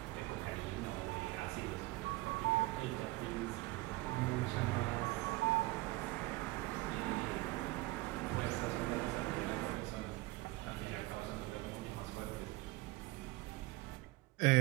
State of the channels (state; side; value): quieter; left; 20.8 dB